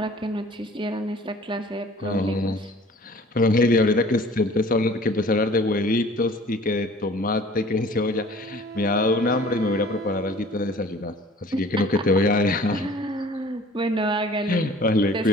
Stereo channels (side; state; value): both; normal; correlation 0.49